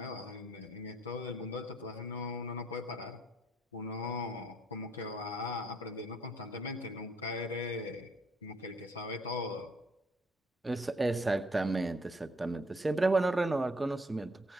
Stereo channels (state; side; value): normal; both; correlation 0.66